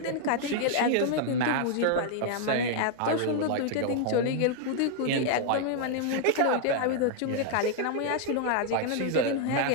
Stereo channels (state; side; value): different; both; correlation 0.00